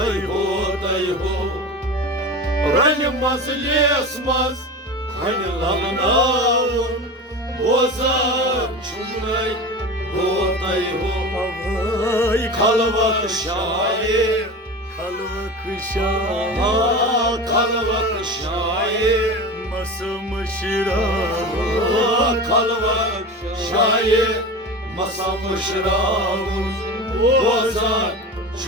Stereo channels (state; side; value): normal; both; correlation 0.29